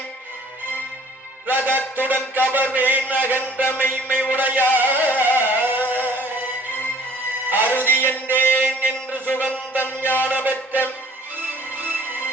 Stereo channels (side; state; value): both; normal; correlation 0.52